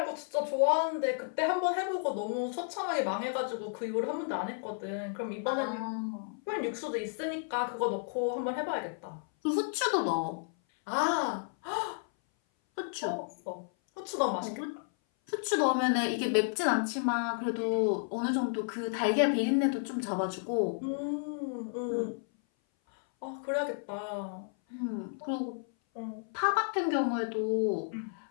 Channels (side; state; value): right; silent; 56 dB below the other